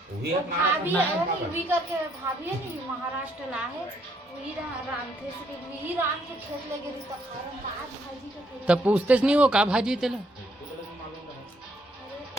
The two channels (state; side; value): normal; both; correlation 0.70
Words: वही वो अपना भाभी अपना है है वो भी करके भाभी है नहीं महाराष्ट्र ला है वही राम थे से वही राम के खेत लगे रही तो खारम दाल भाजी का खेत तब पूछते नहीं हो का भाजी तेला अरे